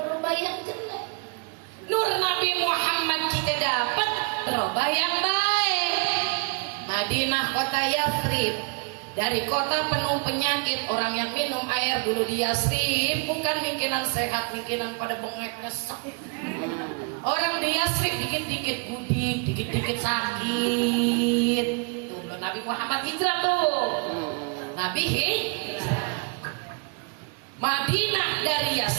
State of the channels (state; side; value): quieter; left; 35.6 dB